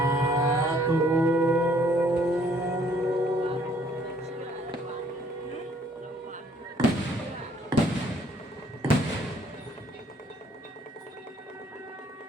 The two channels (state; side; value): normal; both; correlation 0.62